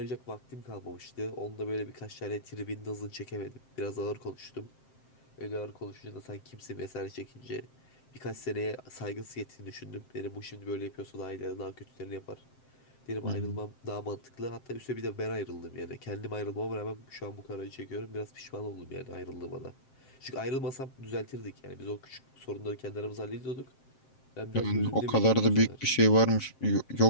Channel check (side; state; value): right; late; 7.6 ms